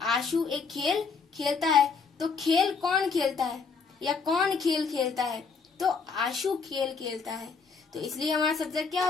आशु एक खेल खेलता है, तो खेल कौन खेलता है या कौन खेल खेलता है? तो आशु खेल खेलता है, तो इसलिए हमारा सब्जेक्ट क्या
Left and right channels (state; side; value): quieter; right; 5.2 dB